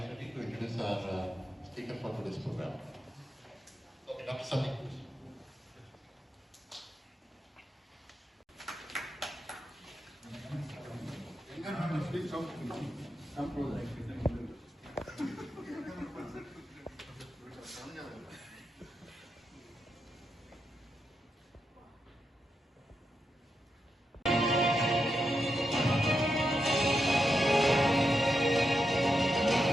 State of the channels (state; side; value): normal; both; correlation 0.85